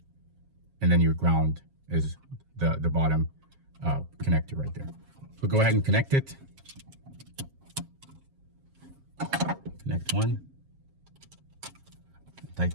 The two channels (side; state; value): left; late; 7.4 ms